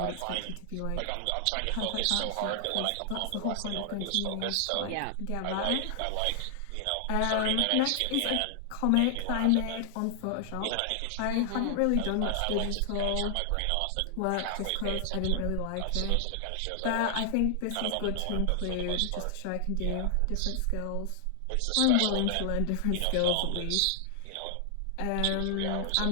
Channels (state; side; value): different; both; correlation 0.00